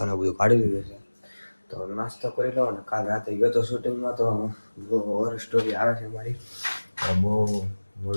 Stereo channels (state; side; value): inverted; both; correlation -1.00